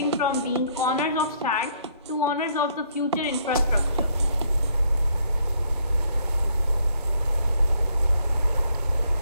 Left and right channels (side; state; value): both; inverted; correlation -0.68